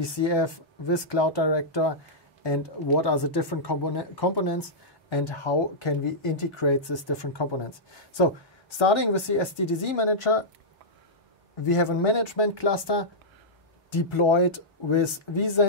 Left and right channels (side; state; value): both; normal; correlation -0.11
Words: with Cloud Director, and what are the different components and how can we integrate these different components. So starting with the SDDC manager, we have a management cluster deployed with